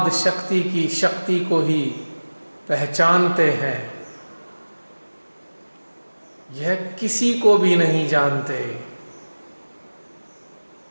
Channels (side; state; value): both; inverted; correlation -1.00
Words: शक्ति की शक्ति को ही पहचानते हैं, यह किसी को भी नहीं जानते।